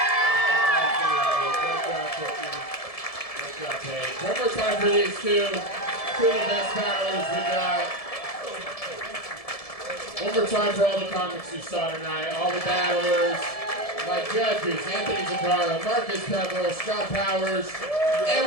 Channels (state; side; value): late; right; 1.7 ms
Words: Great job, Paige. One more time for these two of the best battlers we got. One more time for all the comics you saw tonight, all the battlers. My judges, Anthony Zuccaro, Marcus Peverill, Scott Powers,